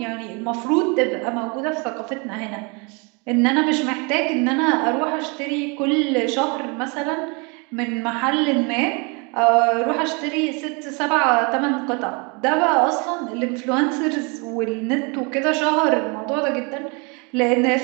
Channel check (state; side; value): quieter; left; 31.5 dB